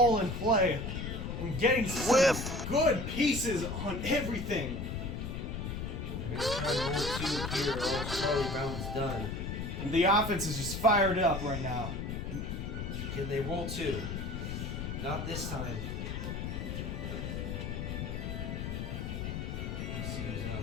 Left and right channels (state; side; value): noise; left; rumble, 4 dB below the sound